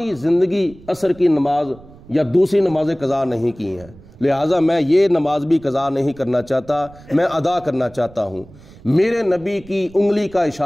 زندگی عصر کی نماز یا دوسری نمازیں قضا نہیں کی ہیں، لہٰذا میں یہ نماز بھی قضا نہیں کرنا چاہتا، میں ادا کرنا چاہتا ہوں۔ میرے نبی کی انگلی کا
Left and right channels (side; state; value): right; noise; rumble, 22 dB below the sound